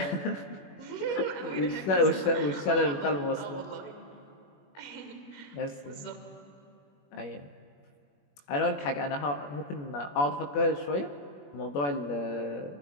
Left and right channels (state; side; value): late; right; 21 ms